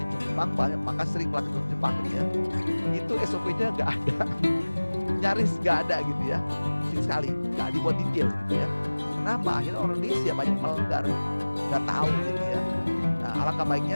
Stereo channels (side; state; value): both; inverted; correlation -1.00